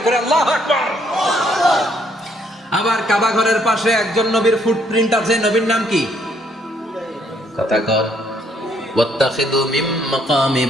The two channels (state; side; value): normal; both; correlation 0.69